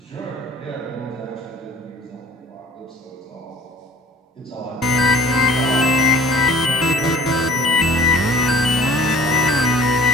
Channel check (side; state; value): both; normal; correlation 0.49